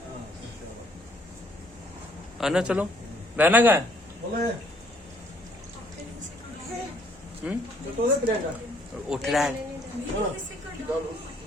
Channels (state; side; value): normal; both; correlation 0.64